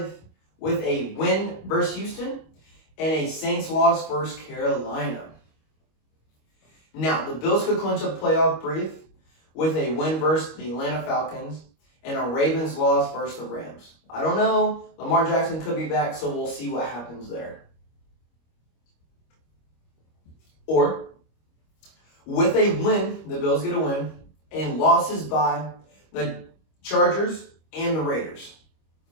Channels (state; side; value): late; right; 25 ms